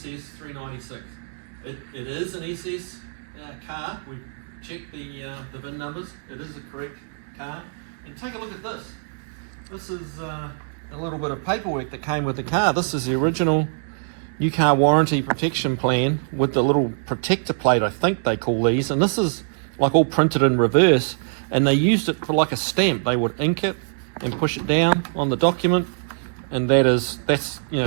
396. It is an SS car. We've checked the VIN numbers. It is the correct car. And take a look at this. This is a little bit of paperwork that came with the car. This is the original new car warranty protection plan with the little protector plate, I think they call these. And this is like all printed in reverse, and they used it for like a stamp. They would ink it and push it down on the document, and that's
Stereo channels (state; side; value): silent; left; 63 dB below the other